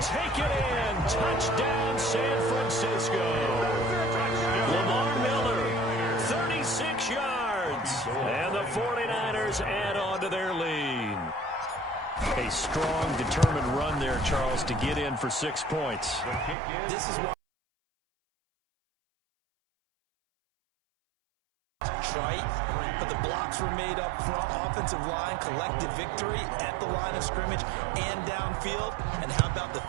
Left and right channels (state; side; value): drops out; left; at 16.6 s